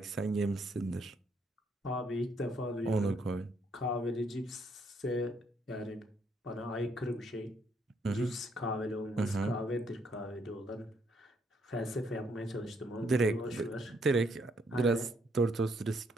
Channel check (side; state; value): both; normal; correlation 0.71